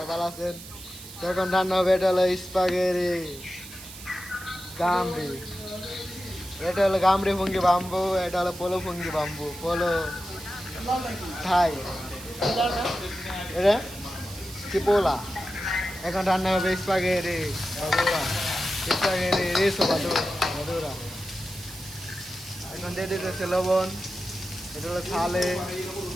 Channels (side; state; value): right; noise; hiss, 14 dB below the sound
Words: ভালো আছেন। তো এখন রান্না হবে, এটা হলো স্পাগেরি গামরি, এটা হলো গামরি ফুঙ্গি বাম্বু, এটা হলো পোলো ফুঙ্গি বাম্বু, পোলো থাই, এটা চিপোলা। এখন রান্না হবে স্পাগেরি বাদুরা, স্পাগেরি রেসো বাদুরা। এখন দিয়ে দিতেছে লবণ, এটা হলো থালে,